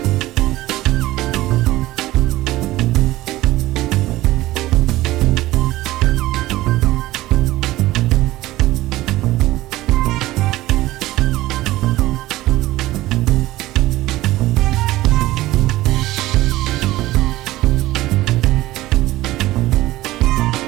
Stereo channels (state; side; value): quieter; left; 17.0 dB